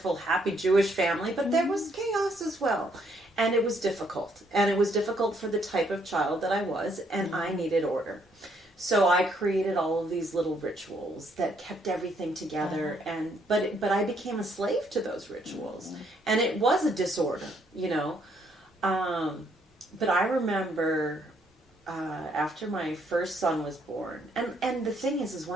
happy Jewish family, but there was chaos as well. And it was difficult. And it was difficult for the type of child that I was, and I needed order. So I created all of these little rituals that kept everything together, but I became a slave to those rituals, and it was a disorder, But I remember after my first son was born, and the thing is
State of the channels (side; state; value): both; normal; correlation 0.70